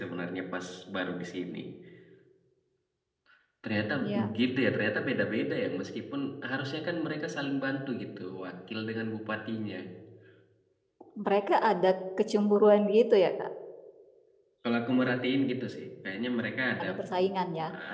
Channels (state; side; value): identical; both; correlation 1.00